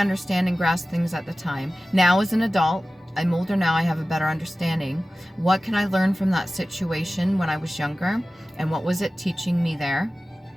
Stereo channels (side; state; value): both; normal; correlation 0.96